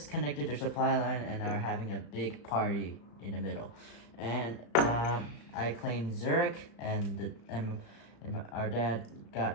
connected their supply line and are having a big party in the middle. And I claimed Zurich, and our dad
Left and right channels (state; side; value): late; right; 35 ms